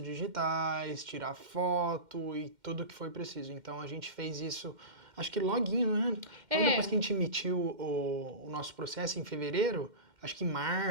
digitais, tirar foto e tudo que foi preciso. Então a gente fez isso, acho que loguinho, né? Então, depois que a gente emitiu o nosso processo em fevereiro, acho que em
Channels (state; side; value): late; left; 2.1 ms